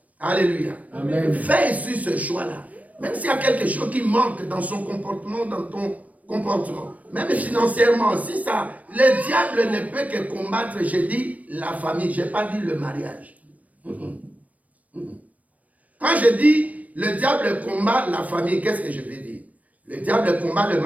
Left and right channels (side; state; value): left; late; 0.070 ms